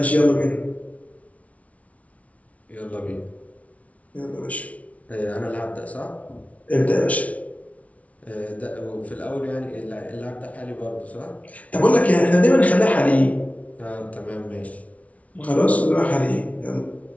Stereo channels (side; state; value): right; late; 0.067 ms